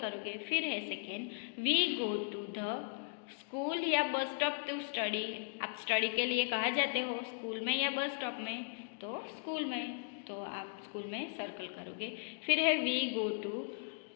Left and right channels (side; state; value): right; silent; digital silence